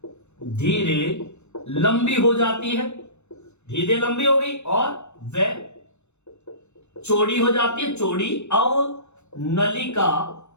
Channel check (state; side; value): late; right; 0.82 ms